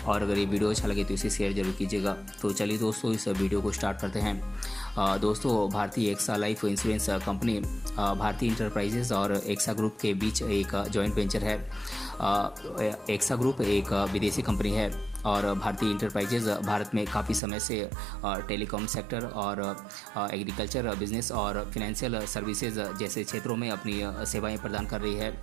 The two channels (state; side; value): drops out; left; at 17.4 s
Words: और अगर ये वीडियो अच्छा लगे तो इसे शेयर जरूर कीजिएगा। तो चलिए दोस्तों, इस वीडियो को स्टार्ट करते हैं। दोस्तों, Bharti AXA life insurance company भारतीय इंटरप्राइजेज और एक्सा ग्रुप के बीच एक जॉइंट वेंचर है। एक्सा ग्रुप एक विदेशी कंपनी है और भारतीय इंटरप्राइजेज भारत में काफ़ी समय से टेलीकॉम सेक्टर और एग्रीकल्चर बिजनेस और फिनेंशियल सर्विसेज जैसे क्षेत्रों में अपनी सेवाएं प्रदान कर रही है।